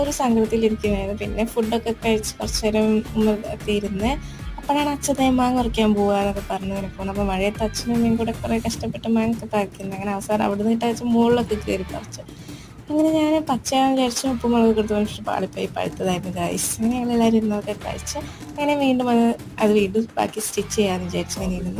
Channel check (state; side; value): identical; both; correlation 1.00